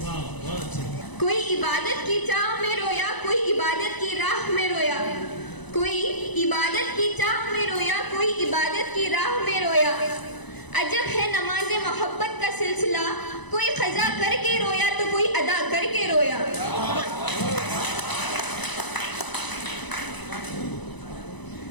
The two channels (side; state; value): right; late; 1.0 ms